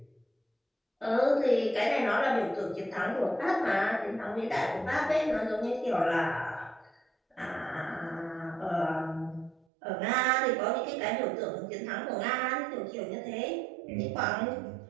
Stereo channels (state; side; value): drops out; left; at 9.7 s